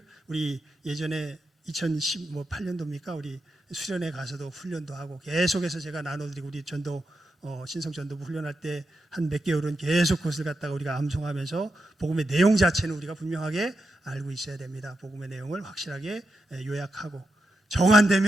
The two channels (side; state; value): both; normal; correlation 0.87